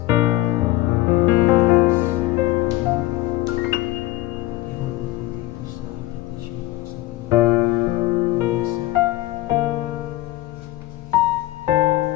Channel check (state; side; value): quieter; right; 17.3 dB